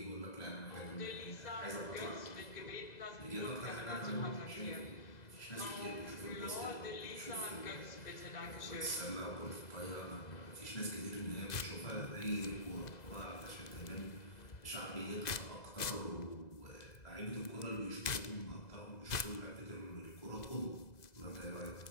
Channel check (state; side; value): late; right; 2.0 ms